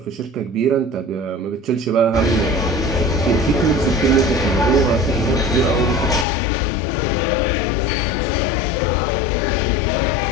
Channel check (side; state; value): right; drops out; at 6.2 s